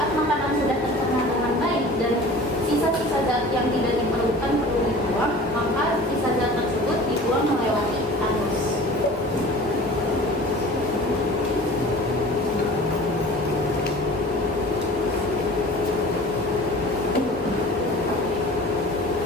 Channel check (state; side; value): normal; both; correlation 0.42